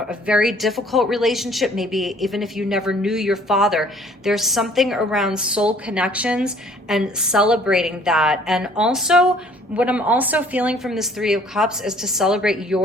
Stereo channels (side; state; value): both; normal; correlation 0.56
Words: very difficult relationship, maybe even if you never knew your father. There's something around soul connections and celebrating that. And also, what I'm also feeling from this Three of Cups is to celebrate